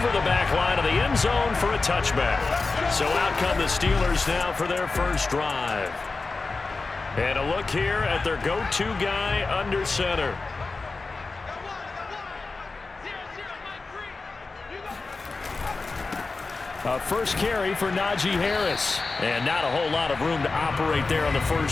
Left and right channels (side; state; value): right; quieter; 3.9 dB